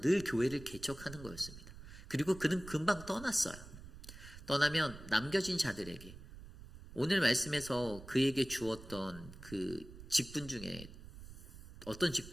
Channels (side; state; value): right; noise; rumble, 15 dB below the sound